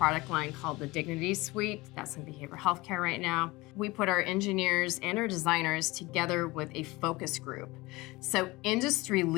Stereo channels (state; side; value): quieter; right; 21.8 dB